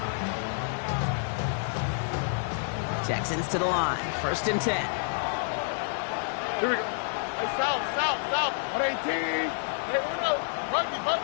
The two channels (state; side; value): silent; right; digital silence